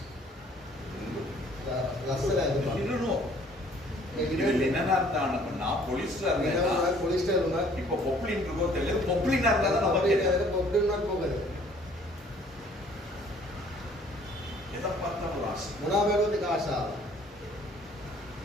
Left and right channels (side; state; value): both; normal; correlation 0.57